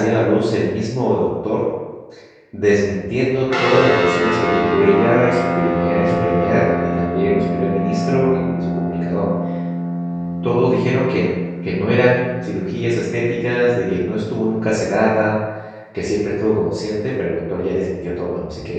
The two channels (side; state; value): both; identical; correlation 1.00